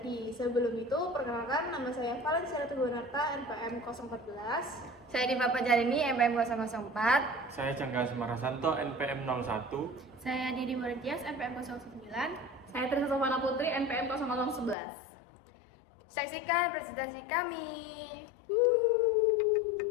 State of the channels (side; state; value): right; drops out; at 14.8 s